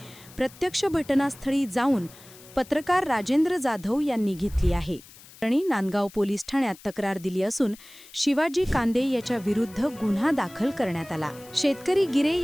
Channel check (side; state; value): left; noise; hiss, 21 dB below the sound